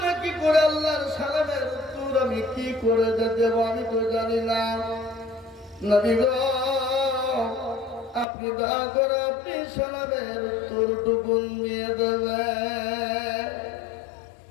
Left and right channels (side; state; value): right; drops out; at 8.2 s